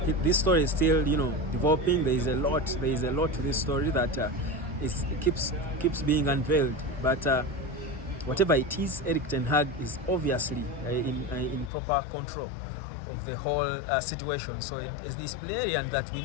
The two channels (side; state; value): right; drops out; at 11.7 s